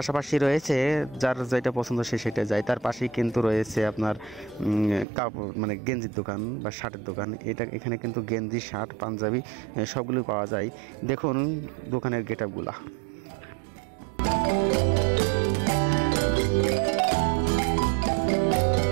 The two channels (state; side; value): drops out; left; at 5.1 s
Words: রয়েছে, যার যেটা পছন্দ সে সেটা যায়। তার পাশেই কিন্তু রয়েছে আপনার কাপড় গেঞ্জির দোকান বা শার্টের দোকান। এখানে কিন্তু গেঞ্জি, শার্ট, পাঞ্জাবি সবগুলো পাওয়া যায়। দেখুন দোকানের গেটআপগুলা।